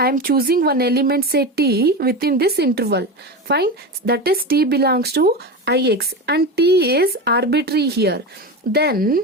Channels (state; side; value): normal; both; correlation 0.22